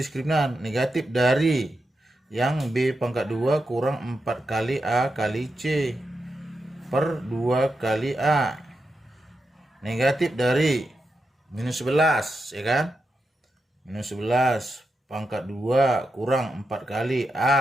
diskriminan? Negatif dari yang B pangkat 2 kurang 4 kali A kali C per 2 kali A. Negatif dari minus 11, ya kan? Minus 11 pangkat 2 kurang 4 kali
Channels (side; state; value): both; normal; correlation 0.87